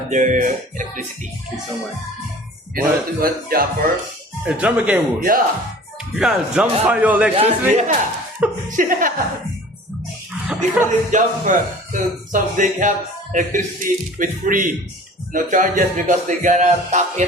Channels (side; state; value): both; normal; correlation 0.45